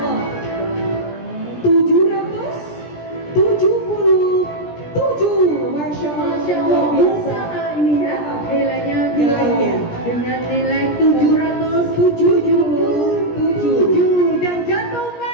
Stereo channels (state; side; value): late; right; 17 ms